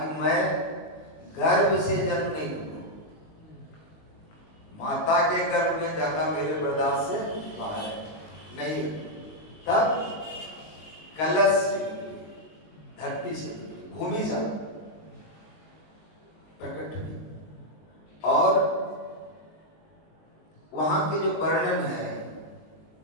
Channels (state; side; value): late; right; 19 ms